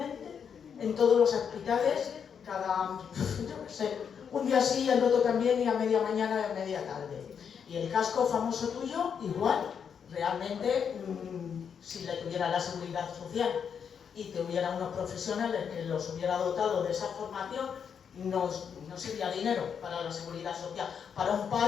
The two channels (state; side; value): quieter; right; 7.2 dB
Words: en todos los hospitales, yo qué sé, un día sí, el otro también, y a media mañana y a media tarde. Y el casco famoso tuyo, igual. Realmente, si le tuviera la seguridad social y te hubiera unos profesionales que los hubiera dotado de esa formación, no sería dinero para la seguridad social. Para un